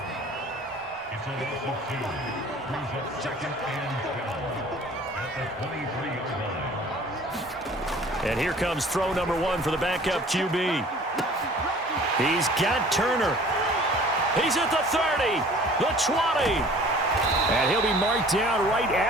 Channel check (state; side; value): normal; both; correlation 0.49